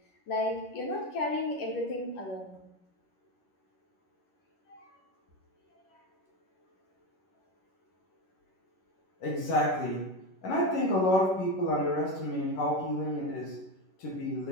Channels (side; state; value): right; late; 11 ms